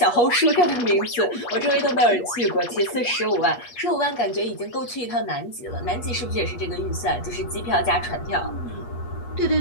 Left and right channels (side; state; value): right; late; 8.3 ms